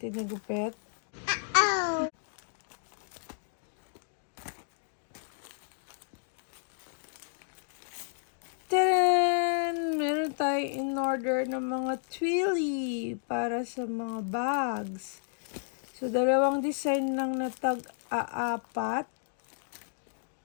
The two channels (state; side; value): silent; right; digital silence